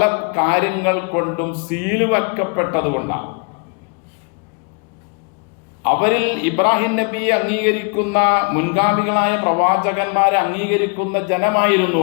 കാര്യങ്ങൾ കൊണ്ടും സീല് വെക്കപ്പെട്ടതുകൊണ്ടാണ്. അവരിൽ ഇബ്രാഹിം നബിയെ അംഗീകരിക്കുന്ന, മുൻഗാമികളായ പ്രവാചകന്മാരെ അംഗീകരിക്കുന്ന ജനമായിരുന്നു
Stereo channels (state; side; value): quieter; right; 37.5 dB